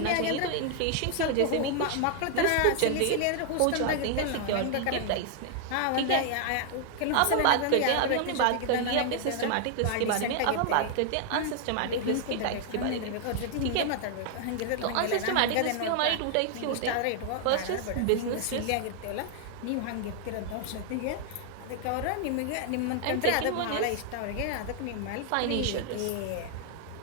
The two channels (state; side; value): different; both; correlation 0.00